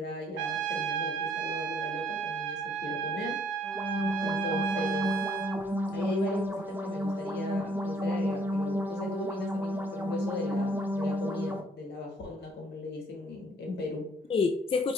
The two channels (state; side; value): normal; both; correlation 0.62